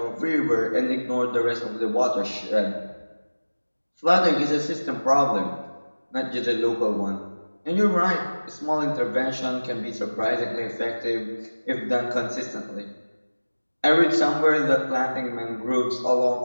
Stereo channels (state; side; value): inverted; both; correlation -1.00